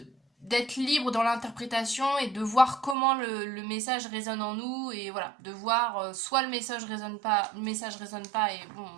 d'être libre dans l'interprétation et de voir comment le message résonne en nous et voilà, de voir soit le message résonne pas et bon,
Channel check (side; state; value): left; drops out; at 3.0 s